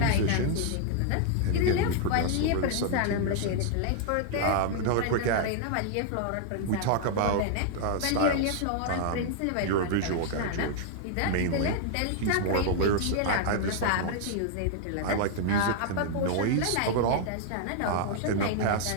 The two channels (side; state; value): both; different; correlation -0.01